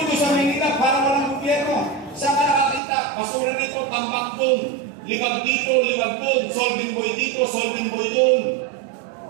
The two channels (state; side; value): drops out; left; at 2.8 s